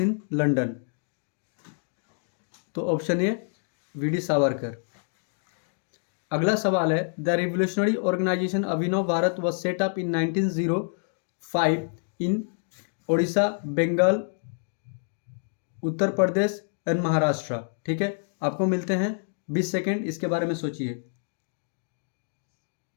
London. तो ऑप्शन ए वी.डी. सावरकर। अगला सवाल है, the revolutionary organisation Abhinav Bharat was set up in 1905 in Odisha, Bengal, Uttar Pradesh and Maharashtra. ठीक है, आपको मिलते हैं 20 सेकेंड, इसके बारे में सोचिए।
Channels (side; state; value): right; silent; 60 dB below the other